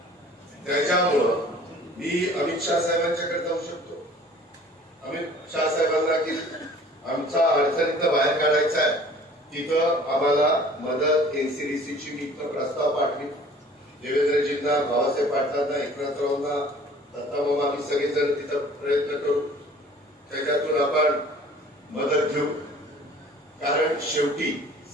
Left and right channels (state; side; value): normal; both; correlation 0.49